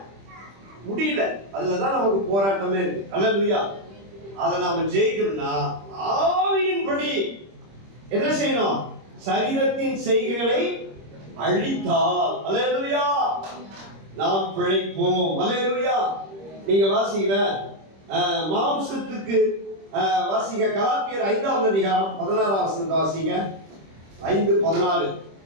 முடியல. அதுலதான் நமக்கு போராட்டமே இருக்கு. அல்லேலூயா. அதை நாம ஜெயிக்கணும்னா ஆவியின்படி என்ன செய்யணும்? சரீரத்தின் செய்கைகளை அழித்தால் அல்லேலூயா நாம் பிழைப்போம். அல்லேலூயா. நீங்க வாசிக்கல மாம்சத்துக்கு வாசிங்க கலாத்தியர் 5வது அதிகாரம் 16வது வசனத்தை வாசிங்க. 5:16.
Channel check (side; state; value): left; late; 26 ms